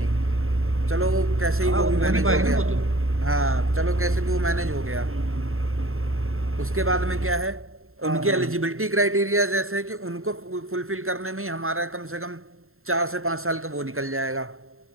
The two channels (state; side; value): late; left; 0.62 ms